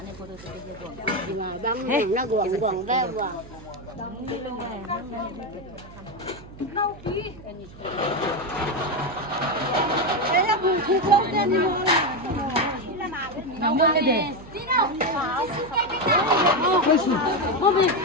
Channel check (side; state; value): right; noise; hum, 18 dB below the sound